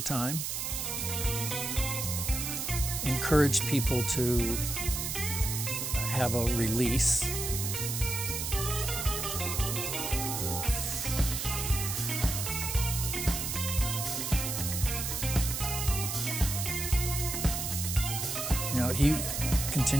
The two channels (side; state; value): right; noise; hiss, 3 dB below the sound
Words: encouraged people to have a release. He